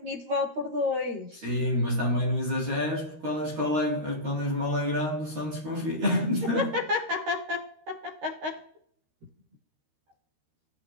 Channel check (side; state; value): left; late; 13 ms